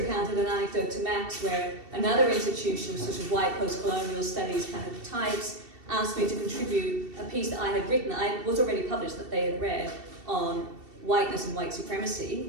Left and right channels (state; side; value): late; left; 2.7 ms